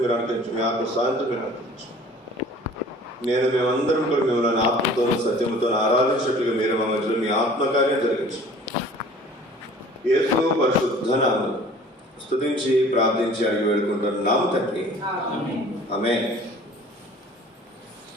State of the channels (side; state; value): both; normal; correlation 0.48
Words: మీరు అనుకరించు. మీ ఆత్మ సాయంత్రం మీరు అనుకరించు. నేను మేమందరం కూడా మిమ్మల్ని ఆత్మతోనూ సత్యంతో ఆరాధించినట్లుగా మీరు మా మధ్యలో మీ ఆత్మకార్యం జరిగించు. యేసు పరిశుద్ధ నామమున స్తుతించి ప్రార్థించి అడిగి వేడుకుంటున్నాము తండ్రి. ఆమేన్.